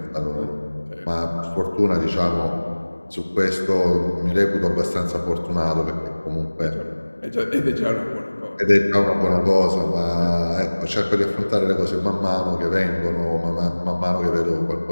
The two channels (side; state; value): both; inverted; correlation -1.00